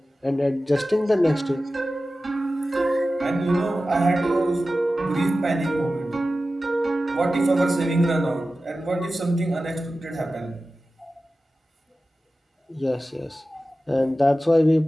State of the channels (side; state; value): both; normal; correlation 0.95